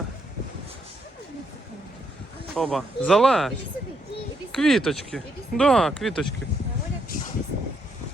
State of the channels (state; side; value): normal; both; correlation 0.75